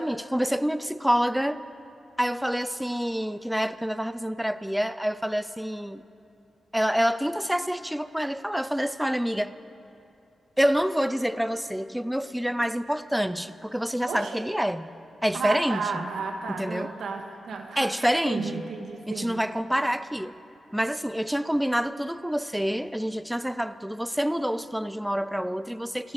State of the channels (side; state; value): both; normal; correlation 0.98